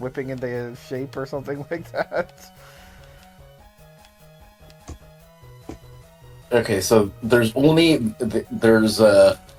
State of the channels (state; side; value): identical; both; correlation 1.00